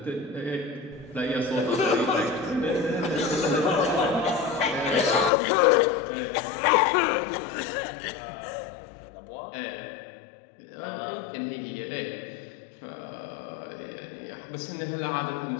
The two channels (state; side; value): drops out; right; at 5.3 s